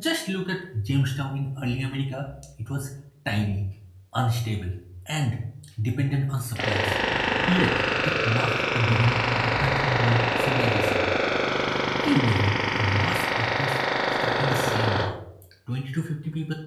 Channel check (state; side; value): identical; both; correlation 1.00